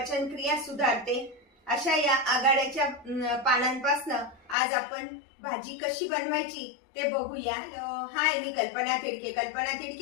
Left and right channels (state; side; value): drops out; right; at 4.5 s